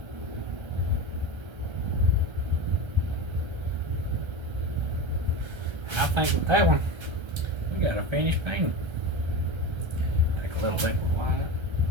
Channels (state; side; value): late; left; 1.3 ms